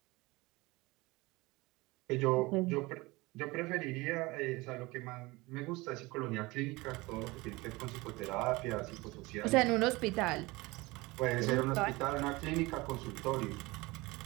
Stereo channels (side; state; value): left; quieter; 22.4 dB